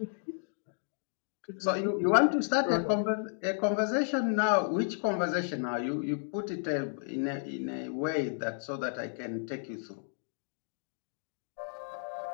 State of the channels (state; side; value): silent; right; digital silence